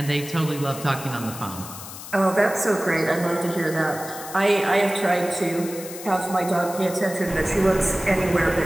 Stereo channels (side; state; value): left; noise; hiss, 12 dB below the sound